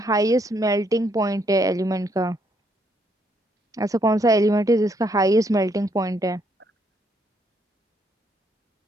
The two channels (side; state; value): both; normal; correlation 0.72